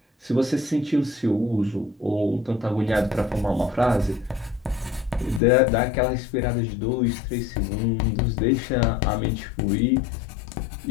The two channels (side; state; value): right; drops out; at 5.4 s